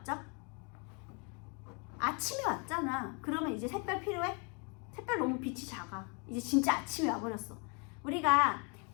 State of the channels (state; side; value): quieter; right; 34.6 dB